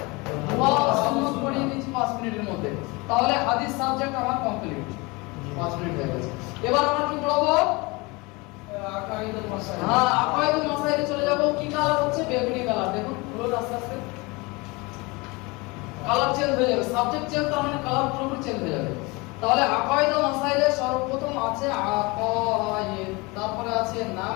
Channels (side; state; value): right; quieter; 25.5 dB